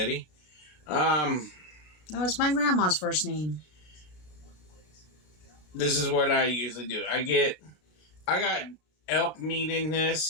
No, it's my grandma's first name. This is what I usually do. I got elk meat in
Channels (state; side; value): late; right; 33 ms